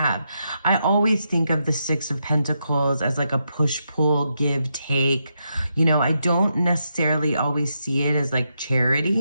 I always think of the Six of Pentacles as like a push-pull, give-take. I don't necessarily always see it as like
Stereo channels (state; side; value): inverted; both; correlation -0.82